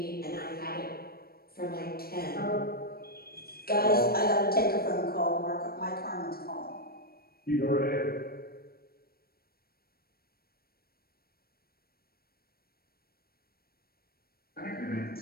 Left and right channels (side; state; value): right; late; 0.44 ms